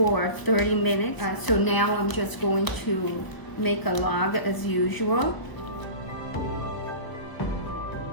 30 minutes. So now I'm just going to make a log as usual.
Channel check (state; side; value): late; right; 1.3 ms